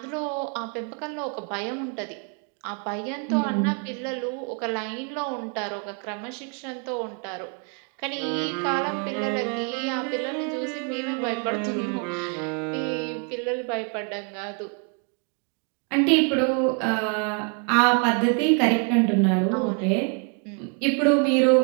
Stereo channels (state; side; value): quieter; left; 38.0 dB